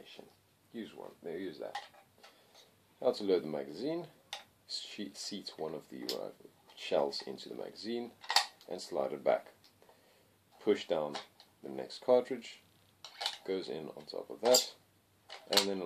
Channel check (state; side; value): identical; both; correlation 1.00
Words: Use one. There, use that. How to load the magazine. Seat one of the shells into the magazine and slide it back. Push down the next cartridge. Goes in on top of that, and then